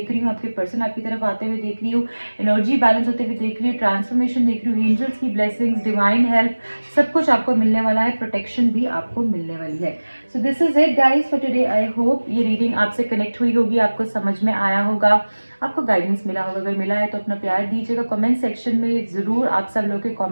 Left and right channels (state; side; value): inverted; both; correlation -1.00